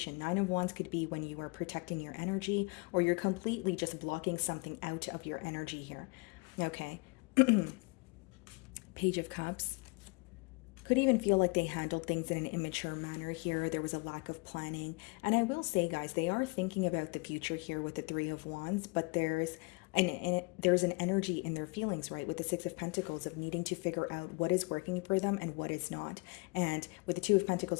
Nine of Wands could be when you are protecting your energy, or you're completely just blocking something out of your energy here. Okay. Page of Cups. Could even feel like they handled things in an immature manner here. There was a lack of planning. And I will say, guys, they are thinking about the future here with the Three of Wands, but there's an energy in their feelings, right, with the Six of Pentacles, of needing to figure out what is working for them and what is not. And with the Two of Pentacles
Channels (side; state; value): right; quieter; 30.2 dB